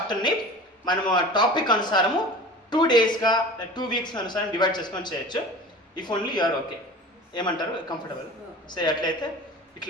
మనము టాపిక్ అనుసారము 2 daysగా 2 weeks అనుసారం డివైడ్ చేసుకొని చేయొచ్చు. If only you are okay. ఏమంటారు? కంఫర్టబుల్. సో అట్లయితే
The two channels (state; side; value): normal; both; correlation 0.37